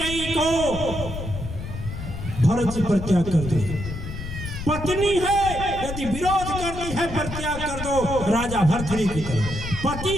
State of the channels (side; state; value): left; noise; rumble, 7 dB below the sound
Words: को भरत जी परित्याग कर दिए। पत्नी है यदि विरोध करती है परित्याग कर दो, राजा भरथरी की तरह। पति